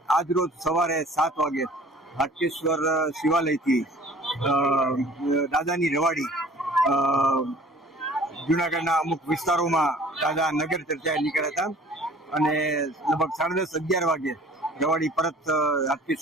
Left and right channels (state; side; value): normal; both; correlation 0.49